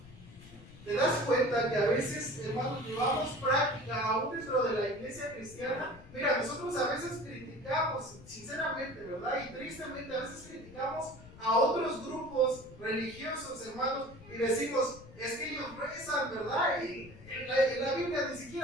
¿Te das cuenta que a veces, hermanos, llevamos práctica aún dentro de la iglesia cristiana? Mira, nosotros a veces criticamos, sinceramente, ¿verdad? Y tristemente a veces criticamos a otros grupos religiosos, hermanos, y decimos, es que ellos rezan, ¿verdad? Y en la Biblia ni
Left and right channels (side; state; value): left; noise; rumble, 19 dB below the sound